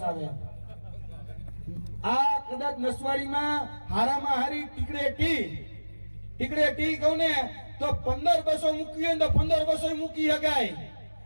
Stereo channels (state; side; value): inverted; both; correlation -1.00